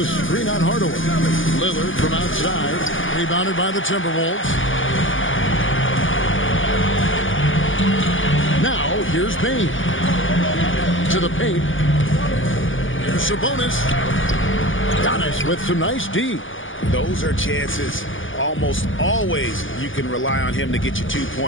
screen on Hardaway. Lillard from outside, rebounded by the Timberwolves. Now, here's Bane. To the paint. Here's Sabonis. Giannis with some nice D. Those are chances. Almost always you can rely on him to get you 2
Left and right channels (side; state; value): right; late; 0.57 ms